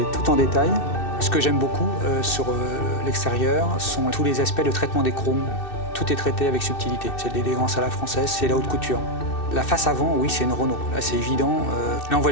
tout en détail. Ce que j'aime beaucoup sur l'extérieur sont tous les aspects de traitement des chromes. Tout est traité avec subtilité. C'est de l'élégance à la française, c'est la haute couture. La face avant, oui, c'est une Renault. Là, c'est évident. Là, on voit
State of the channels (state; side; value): late; right; 2.6 ms